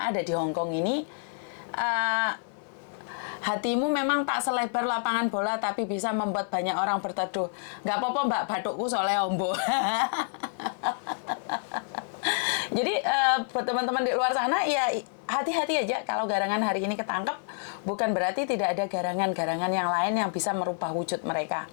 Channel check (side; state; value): right; silent; 59 dB below the other